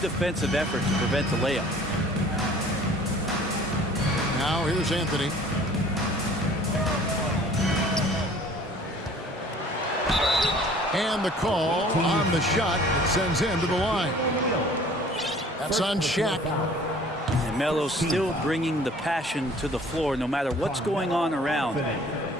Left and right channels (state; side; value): normal; both; correlation 0.51